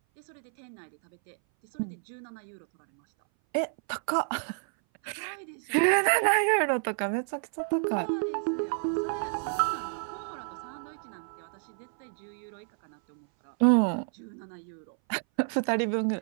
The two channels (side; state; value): left; silent; 58 dB below the other